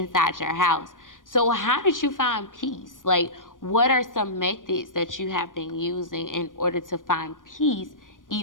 your house. So how did you find peace? Like, what are some methods that you have been using in order to find peace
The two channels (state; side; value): late; right; 0.88 ms